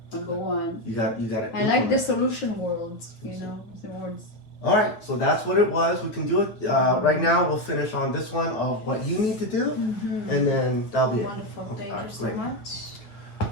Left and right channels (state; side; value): late; right; 8.7 ms